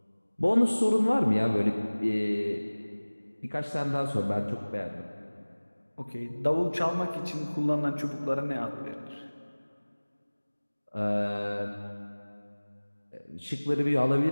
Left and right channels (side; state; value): both; inverted; correlation -1.00